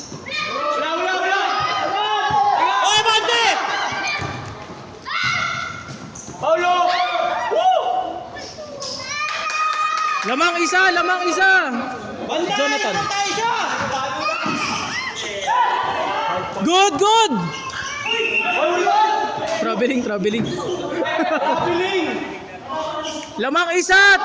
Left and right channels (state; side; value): identical; both; correlation 1.00